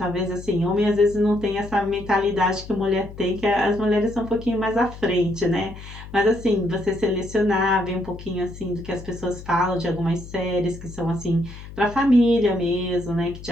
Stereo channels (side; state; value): left; noise; hum, 14 dB below the sound